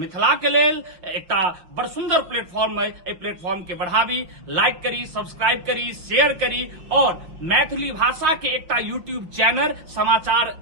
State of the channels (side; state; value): left; late; 6.0 ms